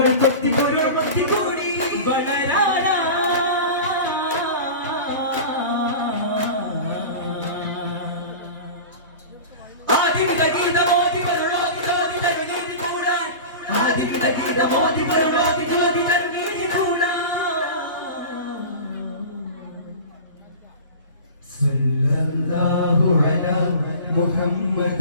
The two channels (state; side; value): inverted; both; correlation -0.33